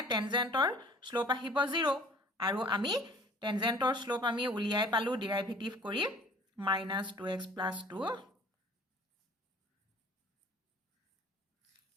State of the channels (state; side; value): normal; both; correlation 0.51